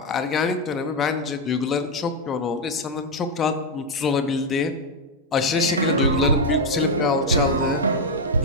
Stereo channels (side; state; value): both; normal; correlation 0.03